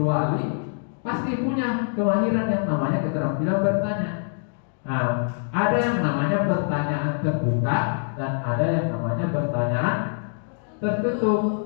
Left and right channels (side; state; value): right; silent; digital silence